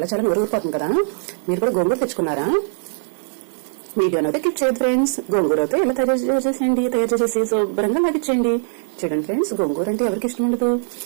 చాలా నోరు ఊరిపోతుంది కదా. మీరు కూడా గోంగూర తెచ్చుకున్నారా? వీడియోని అయితే క్లిక్ చేయదు ఫ్రెండ్స్. గోంగూర అయితే ఎలా తయారు చేసి శుభ్రంగా లాగిచ్చేయండి. చూడండి ఫ్రెండ్స్, గోంగూర అంటే ఎవరికి ఇష్టం ఉండదు?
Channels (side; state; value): left; silent; digital silence